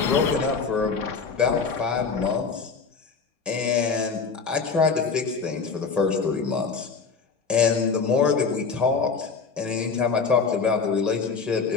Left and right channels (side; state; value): right; quieter; 5.1 dB